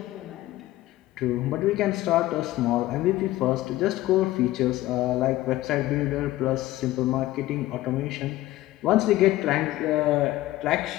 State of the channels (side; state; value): right; quieter; 16.4 dB